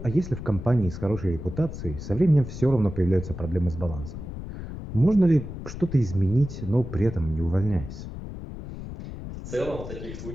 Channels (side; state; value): left; noise; rumble, 10 dB below the sound